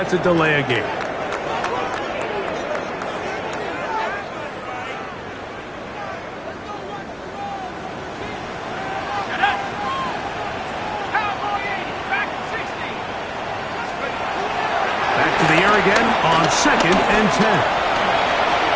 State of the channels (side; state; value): both; identical; correlation 1.00